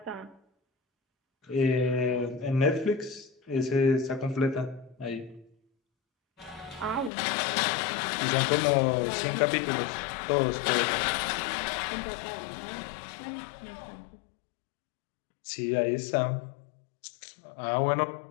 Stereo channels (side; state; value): right; drops out; at 7.1 s